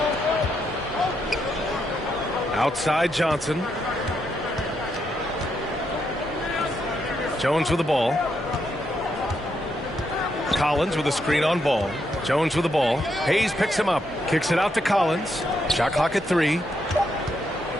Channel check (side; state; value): both; normal; correlation 0.79